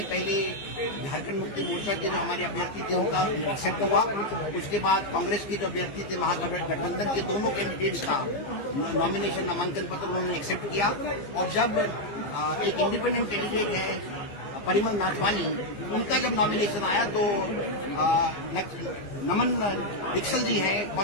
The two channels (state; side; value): late; right; 15 ms